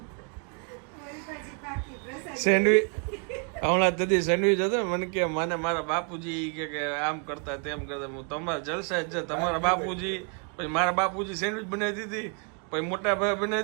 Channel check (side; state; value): left; quieter; 39.1 dB